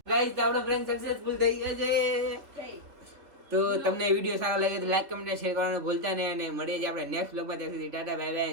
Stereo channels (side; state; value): left; late; 3.5 ms